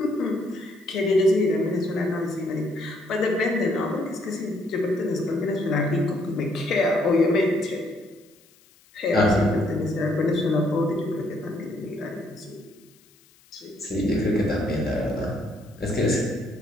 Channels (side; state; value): left; noise; hiss, 30 dB below the sound